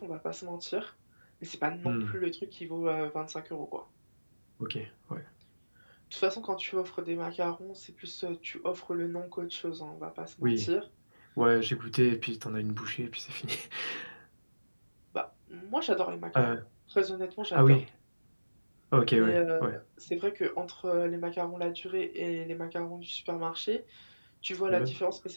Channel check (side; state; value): both; inverted; correlation -1.00